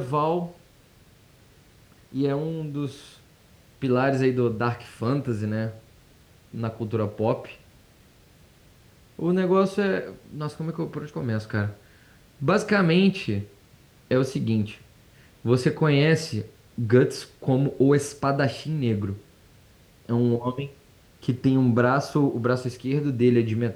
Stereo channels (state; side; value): identical; both; correlation 1.00